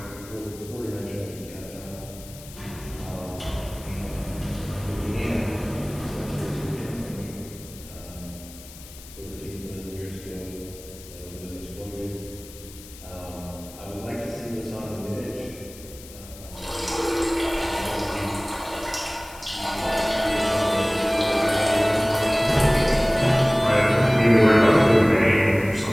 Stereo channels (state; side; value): noise; left; hiss, 18 dB below the sound